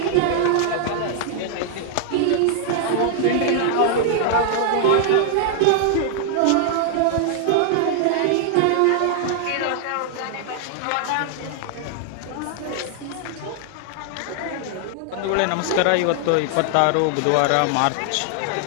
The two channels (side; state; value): both; different; correlation 0.00